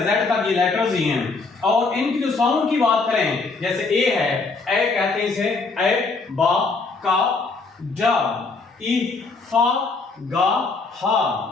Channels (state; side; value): quieter; right; 4.0 dB